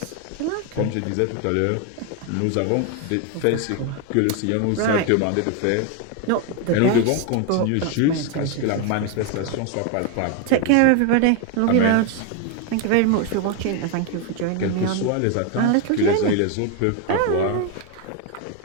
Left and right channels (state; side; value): different; both; correlation 0.01